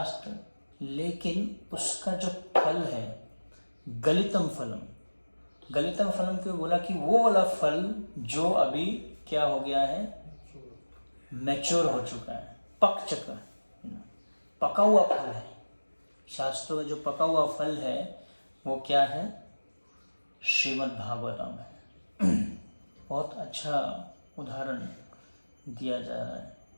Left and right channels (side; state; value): both; inverted; correlation -1.00